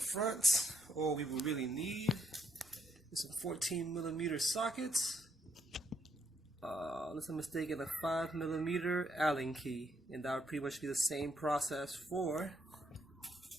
all we will really need is some 14mm sockets. Unless I'm mistaken, a 5mm Allen key, and that would pretty much be the same process for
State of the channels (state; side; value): normal; both; correlation 0.75